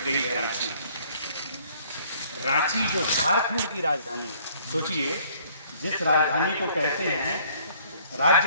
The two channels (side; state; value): both; inverted; correlation -0.60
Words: गई है रांची। रांची जो झारखंड की राजधानी, सोचिए, जिस राजधानी को कहते हैं,